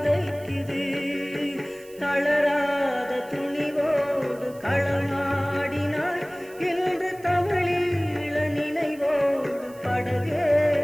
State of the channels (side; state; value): right; noise; hiss, 23 dB below the sound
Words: தளராத துணிவோடு களமாடினாய், இன்று தமிழீழ நினைவோடு